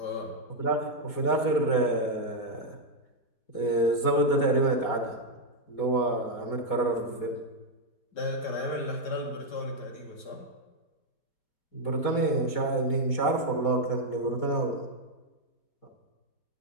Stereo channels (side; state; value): right; late; 4.2 ms